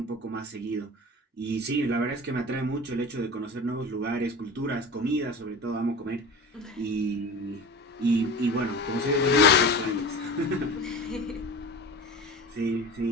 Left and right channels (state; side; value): normal; both; correlation 0.34